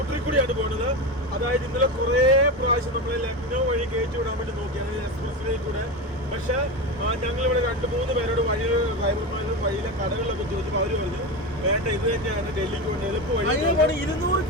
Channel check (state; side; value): normal; both; correlation 0.19